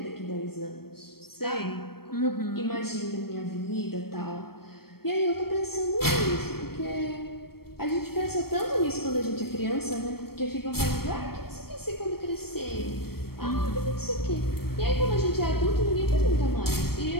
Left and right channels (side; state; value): right; late; 0.94 ms